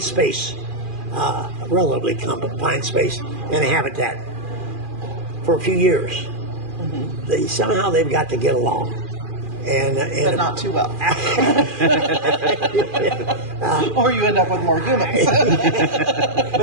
space, relatively confined space, in a habitat for a few years. Somehow they've got to get along. But not too well. Or you end up with more humans.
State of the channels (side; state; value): left; late; 2.4 ms